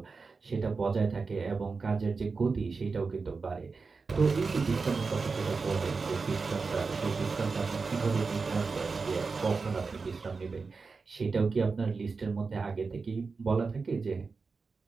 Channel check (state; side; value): quieter; left; 4.5 dB